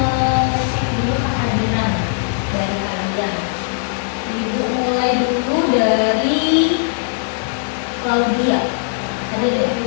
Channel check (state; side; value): silent; right; 67 dB below the other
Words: dulu kehadiran dari kalian. Ibu mulai dulu dari Claudia. Ada deh.